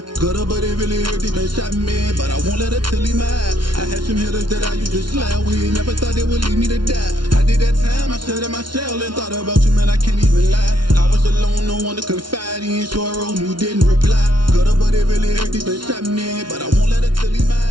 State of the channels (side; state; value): left; late; 0.72 ms